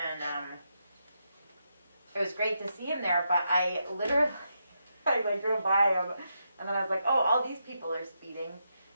it was great to see him there, but I literally, I like drove by him, and then I was like, oh, all these people are speeding,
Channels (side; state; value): both; inverted; correlation -0.83